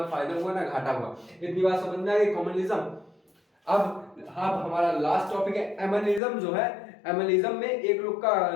फायदा हुआ ना घाटा हुआ। इतनी बात समझ में आ गई, कॉमनलिज्म। अब हमारा लास्ट टॉपिक है एमनिज्म जो है। एमनिज्म में एक लोग का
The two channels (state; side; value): drops out; right; at 6.2 s